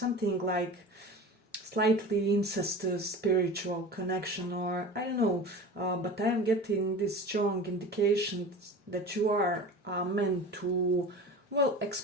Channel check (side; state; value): both; normal; correlation 0.35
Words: like slightly incestuous spiritual connection, or I don't know, but I am getting this strong indication that you are meant to, well,